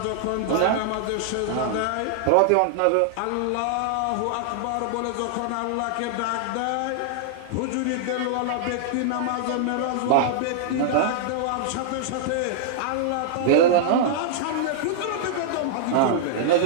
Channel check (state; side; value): different; both; correlation -0.01